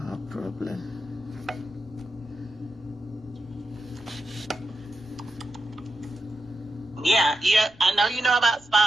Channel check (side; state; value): right; noise; rumble, 28 dB below the sound